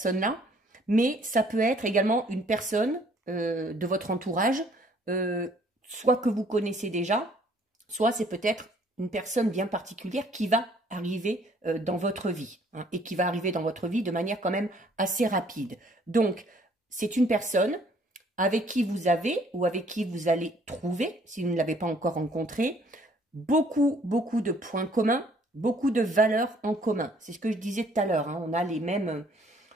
mais ça peut être également une personne de votre entourage, soit que vous connaissez déjà, soit c'est peut-être une personne bien particulière qui va arriver dans votre vie, hein, et qui va arriver dans votre vie de manière quand même assez rapide. Donc, c'est une personne avec qui vous avez ou avec qui vous allez trouver, si vous ne l'avez pas encore rencontré, beaucoup de points communs, beaucoup de valeurs en commun. C'est ce que je disais tout à l'heure, hein, on a les mêmes...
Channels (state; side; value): normal; both; correlation 0.61